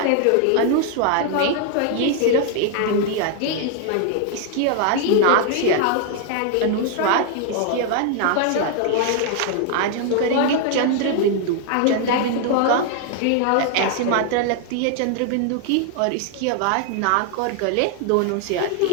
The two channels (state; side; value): different; both; correlation 0.00